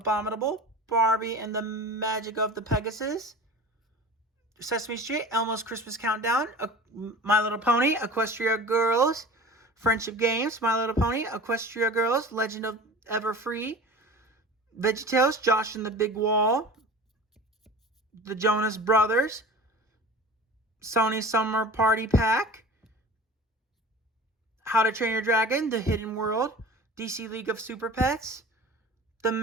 Barbie and the Magic of the Pegasus, Sesame Street, Elmo's Christmas Countdown, My Little Pony, Equestria Girls, Friendship Games, My Little Pony, Equestria Girls, Legend of Everfree, VeggieTales, Josh and the Big Wall, The Jonas Brothers, Sony Summer Party Pack, How to Train Your Dragon, The Hidden World, DC League of Super Pets, The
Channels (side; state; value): both; normal; correlation 0.38